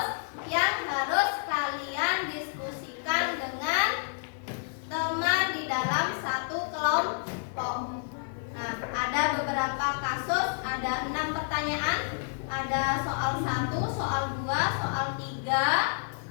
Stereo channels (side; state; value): right; silent; 58 dB below the other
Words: yang harus kalian diskusikan dengan teman di dalam satu kelompok. Nah, ada beberapa kasus, ada 6 pertanyaan. Ada soal 1, soal 2, soal 3,